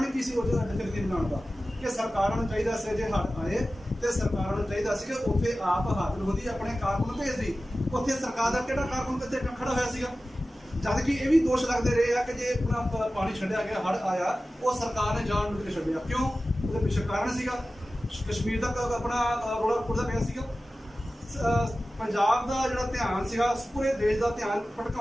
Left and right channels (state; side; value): normal; both; correlation 0.95